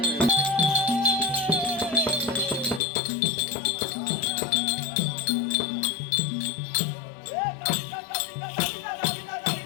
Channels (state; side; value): drops out; right; at 2.8 s